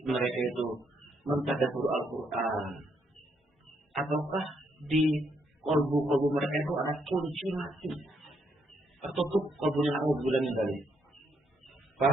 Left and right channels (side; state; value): both; normal; correlation 0.75